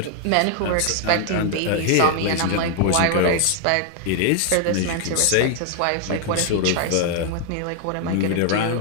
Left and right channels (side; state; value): both; different; correlation 0.00